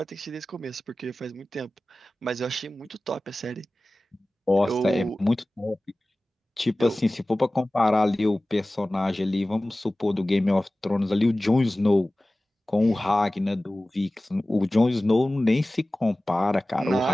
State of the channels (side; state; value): both; normal; correlation 0.97